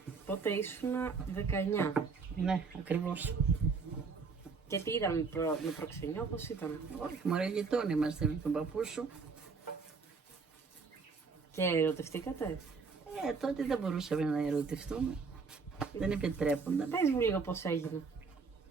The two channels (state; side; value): quieter; left; 4.9 dB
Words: Πότε ήσουν 19. Ναι, ακριβώς. Και τι ήταν με προξενιό, πώς ήταν? Όχι, μωρέ, γειτόνι είμαστε με τον παππού σου. Και ερωτευτήκατε? Τότε δεν μπορούσαμε να ερωτευτούμε. Δεν επιτρέπονταν. Πες μου λίγο πώς έγινε.